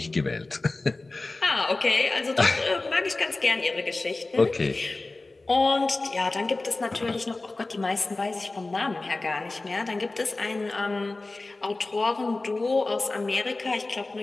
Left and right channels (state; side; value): quieter; right; 3.2 dB